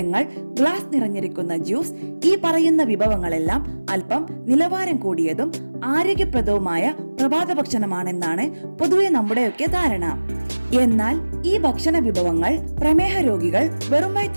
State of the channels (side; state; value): both; inverted; correlation -1.00